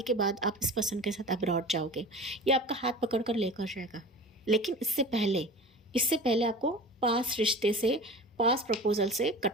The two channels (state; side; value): normal; both; correlation 0.36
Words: के बाद आप इस पर्सन के साथ अब्रॉड जाओगे, ये आपका हाथ पकड़ कर लेकर जाएगा। लेकिन इससे पहले आपको पास रिश्ते से, पास प्रपोजल से